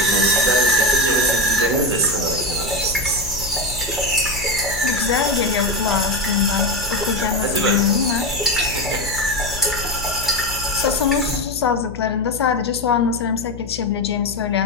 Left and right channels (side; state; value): left; noise; hum, 13 dB below the sound